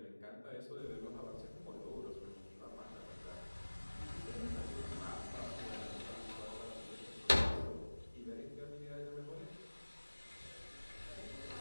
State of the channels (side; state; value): both; inverted; correlation -1.00